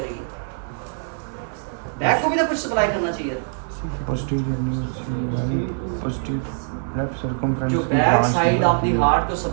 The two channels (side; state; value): left; silent; digital silence